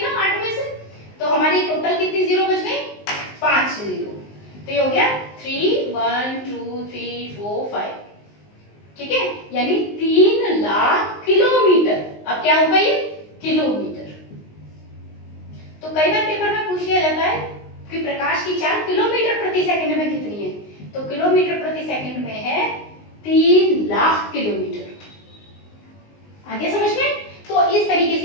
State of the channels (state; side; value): late; right; 19 ms